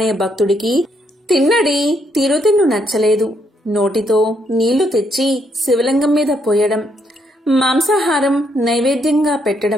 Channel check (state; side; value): normal; both; correlation 0.74